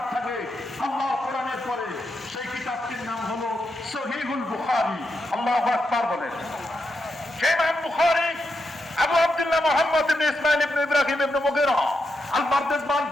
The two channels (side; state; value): both; normal; correlation 0.85